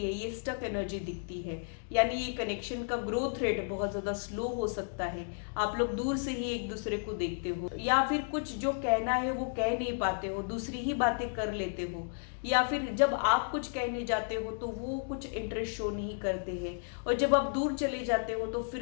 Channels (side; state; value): right; silent; digital silence